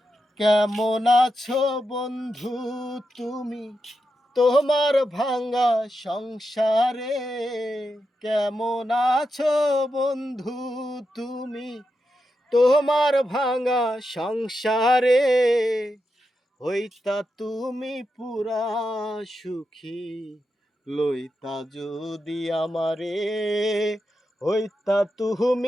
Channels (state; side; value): normal; both; correlation 0.87